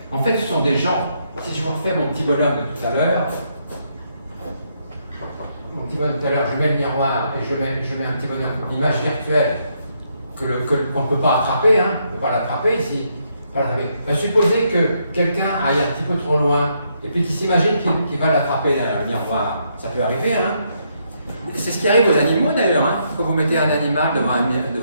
ce sont des gens, si je vous refais mon petit bonhomme de tout à l'heure, je mets le miroir et je mets un petit bonhomme d'image virtuelle qu'on ne peut pas attraper, on ne peut pas l'attraper ici. Supposez que quelqu'un aille un petit peu trop loin et puis qu'il s'imagine qu'il va l'attraper derrière le miroir. Ça peut arriver, C'est ce qui arrive aux animaux d'ailleurs, Quand vous mettez un animal devant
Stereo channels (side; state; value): both; inverted; correlation -0.76